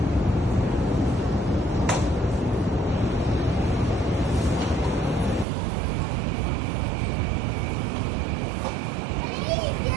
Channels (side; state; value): left; drops out; at 5.5 s